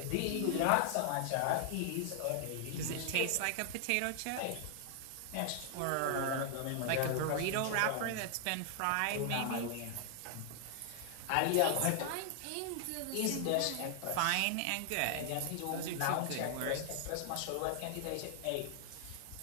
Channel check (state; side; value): different; both; correlation 0.00